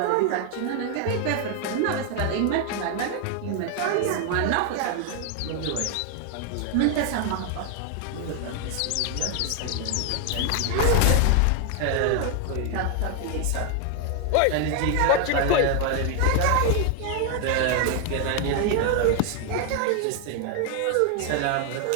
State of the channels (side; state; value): both; different; correlation 0.00